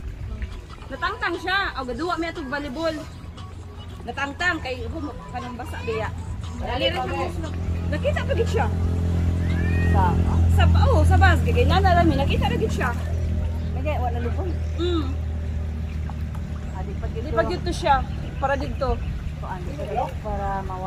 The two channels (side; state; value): both; identical; correlation 1.00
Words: Natangtang siya. O gaduwa mi atog volleyball. Natangtang kay kanang basa biya. Dali rin siya. Nakita pa gid siya. Sa bas kay nana rami nakita ra gid siya. Nagay wala lupon. Di pa gid to siya para dito. Para